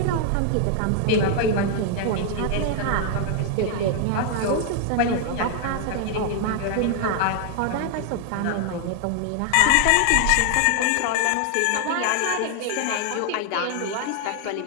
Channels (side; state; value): both; different; correlation 0.00